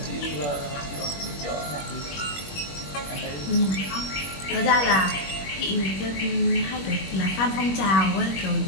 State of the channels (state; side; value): late; right; 21 ms